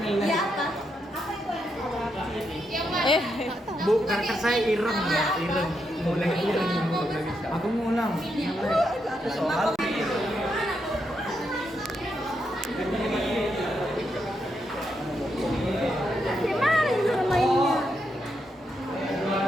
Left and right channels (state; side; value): normal; both; correlation 0.81